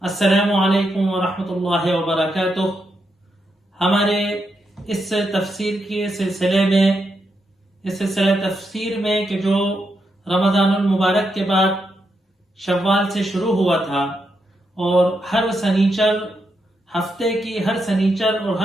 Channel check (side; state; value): both; normal; correlation 0.82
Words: السلام علیکم ورحمۃ اللہ وبرکاتہ. ہمارے اس تفسیر کے سلسلے میں، اس سلسلہ تفسیر میں کہ جو رمضان المبارک کے بعد شوال سے شروع ہوا تھا، اور ہر سنیچر، ہفتے کی ہر سنیچر اور